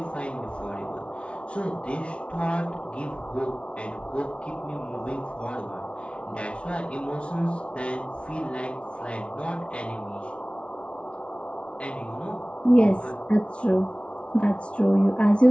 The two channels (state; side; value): late; right; 0.060 ms